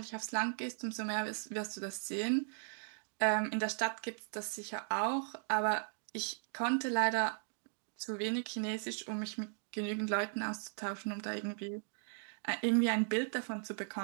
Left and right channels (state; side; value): silent; left; digital silence